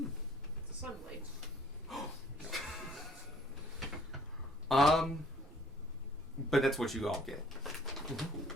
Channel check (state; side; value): noise; right; rumble, 21 dB below the sound